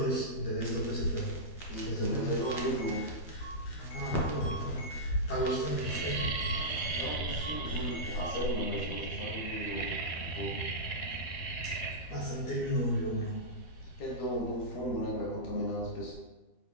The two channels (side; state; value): right; late; 12 ms